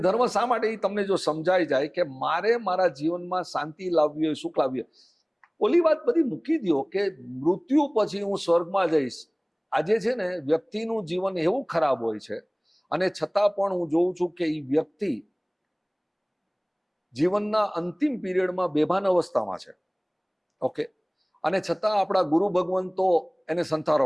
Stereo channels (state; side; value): identical; both; correlation 1.00